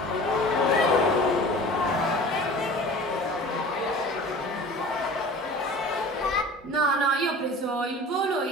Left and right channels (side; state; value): both; normal; correlation 0.40